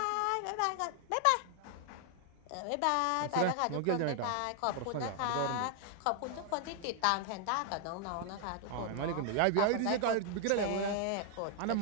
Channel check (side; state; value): both; different; correlation 0.00